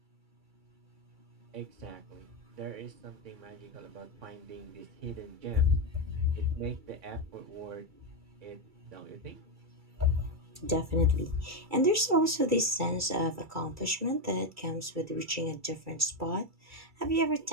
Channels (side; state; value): left; late; 2.3 ms